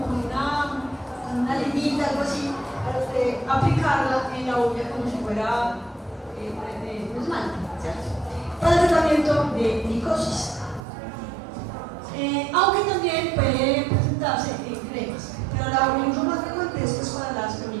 con una limita, algo así, para usted aplicarla en la uña como si fuera un esmalte, ¿cierto? Para el tratamiento de micosis. Aunque también puede presentarse en cremas, pero el uso más frecuente es pues, para las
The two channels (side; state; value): left; drops out; at 10.8 s